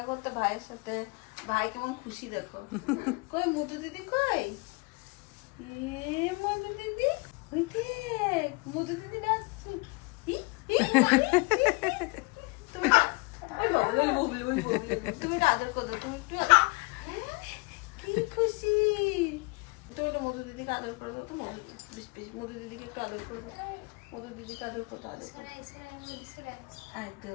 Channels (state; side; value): quieter; right; 29.4 dB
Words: করতে ভাইয়ের সাথে, ভাই কেমন খুশি দেখো। কই মধু দিদি কই? এ মধু দিদি, ওই দেখ মধু দিদি ডাকছে। ই, ই, তুমি ওই বাবু, ওই বাবু, ওই বাবু। তুমি এটা আদর করো, তুমি একটু কি খুশি। তুমি একটু মধু দিদিকে আদর করে দাও তো, মধু দিদিকে একটু আদর করে দাও, মধু দিদিকে আদর করতে আদর করো।